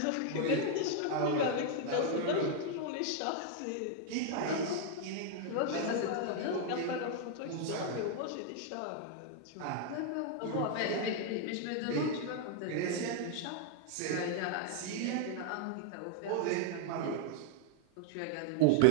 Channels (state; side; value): different; both; correlation 0.00